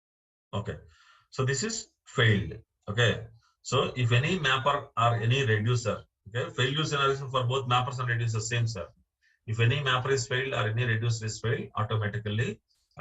Okay. So this is failed. Okay. So if any mapper or any reducer, okay, failure scenario for both mappers and reducers same, sir. If any mapper is failed or any reducer is failed, automatically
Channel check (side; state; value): both; identical; correlation 1.00